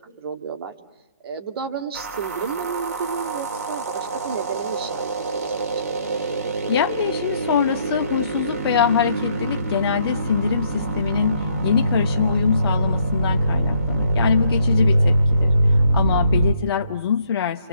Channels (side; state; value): both; inverted; correlation -0.68